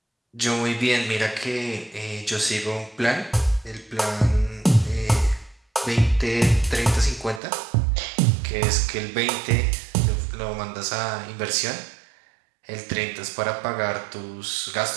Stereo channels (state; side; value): drops out; left; at 7.4 s